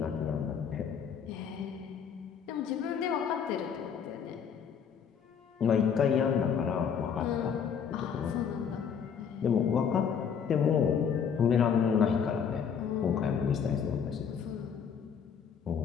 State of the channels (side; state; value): right; quieter; 7.2 dB